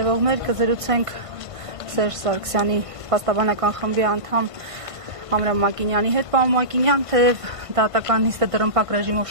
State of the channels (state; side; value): late; left; 1.5 ms